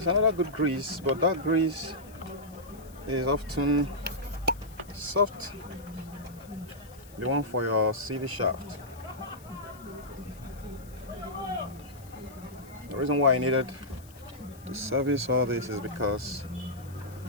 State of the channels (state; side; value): noise; left; hiss, 23 dB below the sound